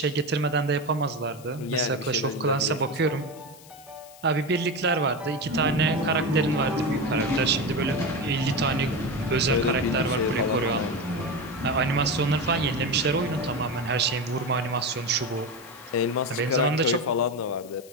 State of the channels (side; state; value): left; noise; hiss, 22 dB below the sound